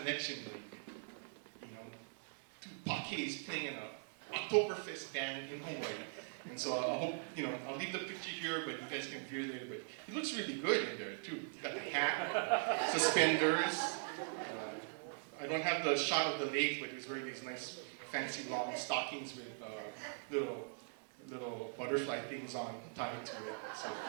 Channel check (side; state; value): left; silent; 50 dB below the other